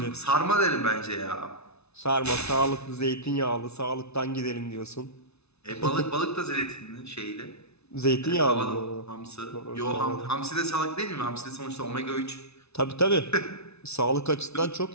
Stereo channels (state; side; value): late; right; 0.80 ms